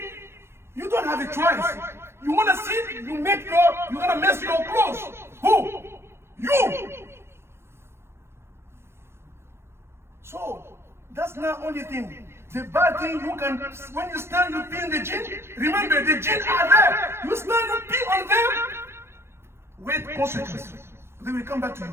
you don't have a choice. You want to sit, you're going to mess your clothes. Who? You. So, that's not only thing. The bad thing you can, when you stand, you pee in the jinn. Remember, the jinn are there. You stand, you pee on them. Wait consequences. They will come back to you.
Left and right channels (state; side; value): late; left; 0.12 ms